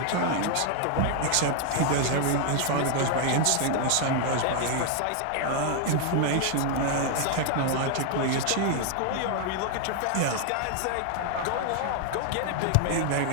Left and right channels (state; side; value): different; both; correlation 0.00